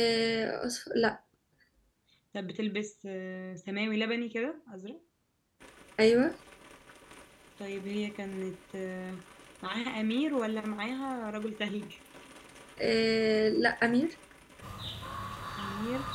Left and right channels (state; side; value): identical; both; correlation 1.00